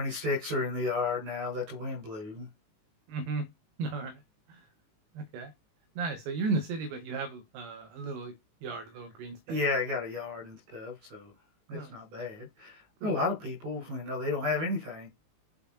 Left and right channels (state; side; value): late; left; 19 ms